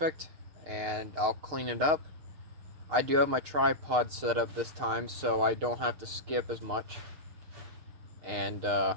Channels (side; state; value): left; late; 6.6 ms